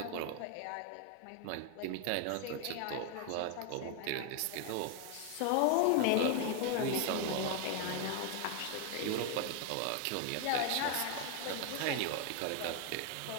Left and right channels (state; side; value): different; both; correlation 0.00